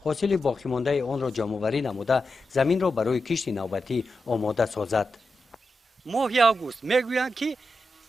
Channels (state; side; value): normal; both; correlation 0.89